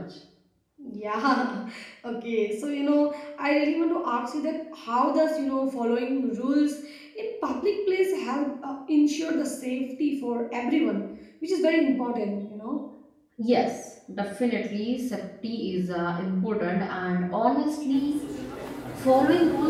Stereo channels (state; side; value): identical; both; correlation 1.00